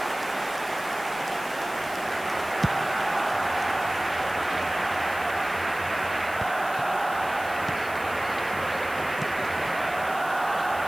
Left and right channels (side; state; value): left; noise; hiss, 16 dB below the sound